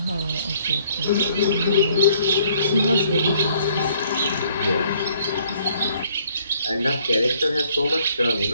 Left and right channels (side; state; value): both; inverted; correlation -0.63